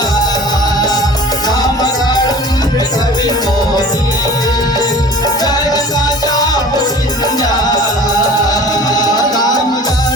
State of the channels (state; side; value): normal; both; correlation 0.44